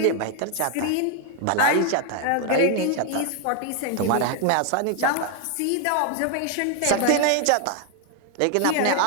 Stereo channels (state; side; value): different; both; correlation 0.00